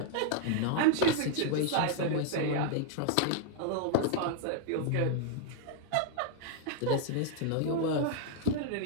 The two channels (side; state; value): both; different; correlation 0.00